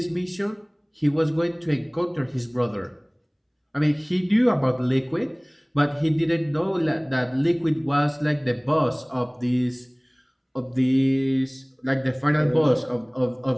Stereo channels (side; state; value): both; identical; correlation 1.00